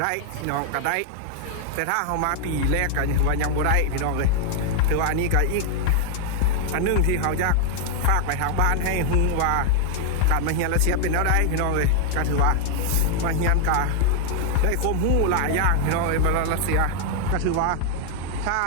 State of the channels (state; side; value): different; both; correlation 0.00